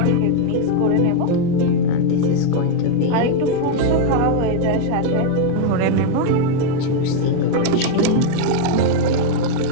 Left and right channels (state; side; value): different; both; correlation 0.00